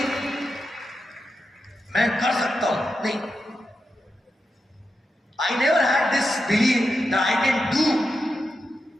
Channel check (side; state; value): both; normal; correlation 0.88